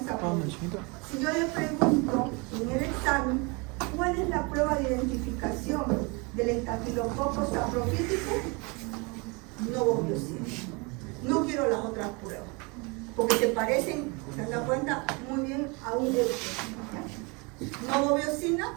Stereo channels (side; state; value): left; quieter; 29.3 dB